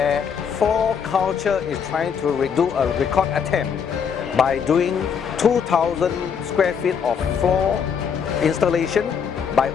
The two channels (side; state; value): right; quieter; 7.0 dB